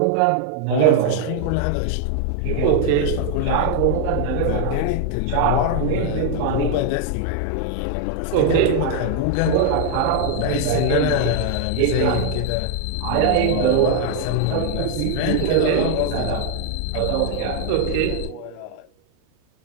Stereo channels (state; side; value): different; both; correlation 0.00